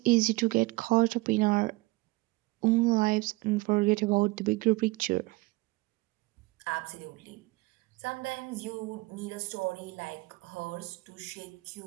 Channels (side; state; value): left; quieter; 22.2 dB